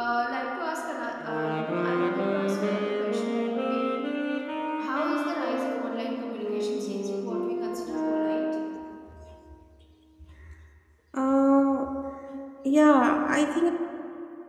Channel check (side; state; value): both; identical; correlation 1.00